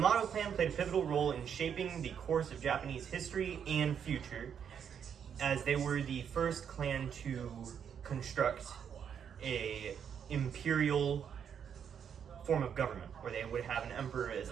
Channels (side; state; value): left; quieter; 8.0 dB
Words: clan played a pivotal role in shaping the course of Japanese history and future, as they were the first clan to construct a imperial form of government, where they would have an emperor as